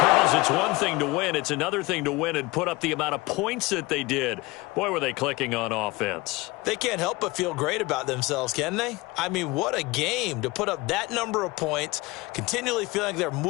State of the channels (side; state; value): right; quieter; 22.3 dB